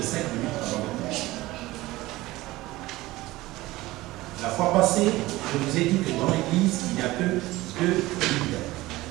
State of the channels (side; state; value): left; quieter; 18.6 dB